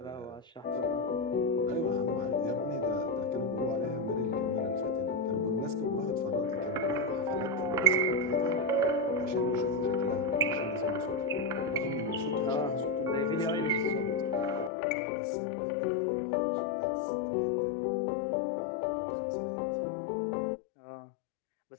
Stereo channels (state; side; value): drops out; right; at 14.7 s